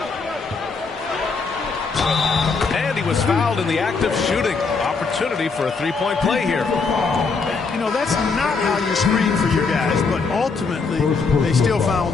And he was fouled in the act of shooting. Opportunity for a 3-point play here. You know, that's not how you screen for your guys, but ultimately they still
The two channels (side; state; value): right; quieter; 4.6 dB